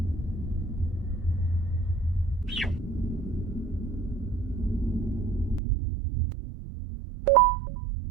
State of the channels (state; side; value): drops out; left; at 5.6 s